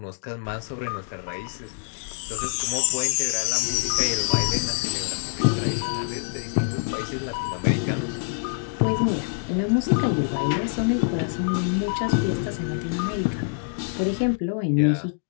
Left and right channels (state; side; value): silent; right; digital silence